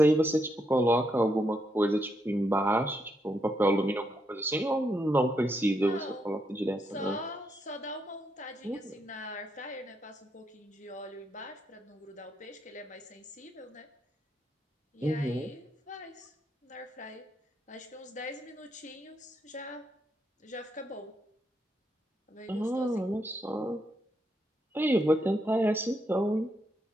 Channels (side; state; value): both; normal; correlation 0.79